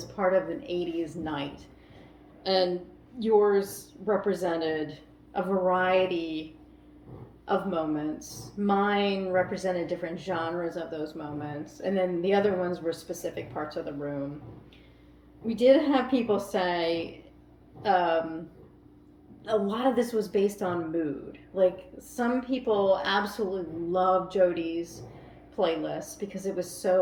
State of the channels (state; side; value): identical; both; correlation 1.00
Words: part of an 80s night, and yours represented a variety of moments. Mine represented different genres of those moments, and then the other ones were specific parts of the room. We did have people say a lot of this was based on mood. Like, some people absolutely loved Jody's playlist because it was